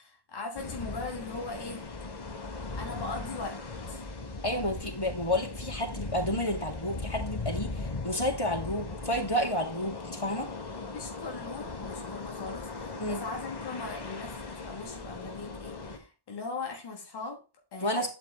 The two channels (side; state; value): right; late; 1.1 ms